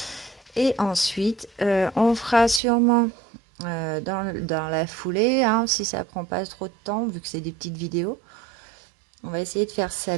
Et ensuite, on fera sûrement dans la foulée, hein, si ça prend pas trop de temps, vu que c'est des petites vidéos. On va essayer de faire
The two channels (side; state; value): left; drops out; at 2.6 s